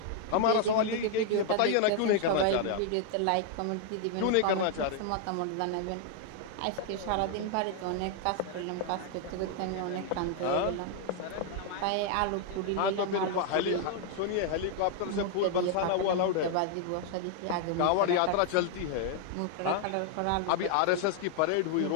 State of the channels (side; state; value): both; different; correlation 0.00